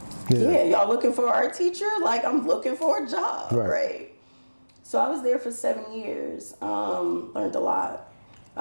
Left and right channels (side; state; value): both; inverted; correlation -1.00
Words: yeah, y'all looking for an art teacher? Like, I'm looking for a job, right? So I was there for 7 years, learned a lot.